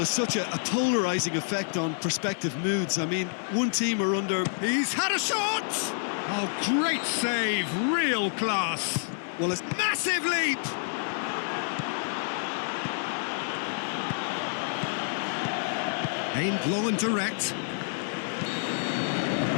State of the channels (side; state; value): right; silent; 59 dB below the other